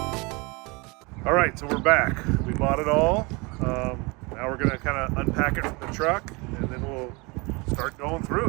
All right, so we're back. We bought it all. Now we're gonna kind of unpack it from the truck, and then we'll start going through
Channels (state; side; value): quieter; left; 27.2 dB